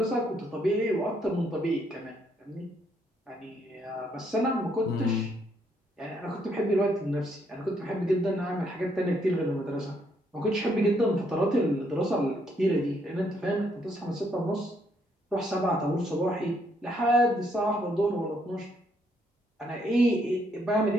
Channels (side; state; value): both; normal; correlation 0.72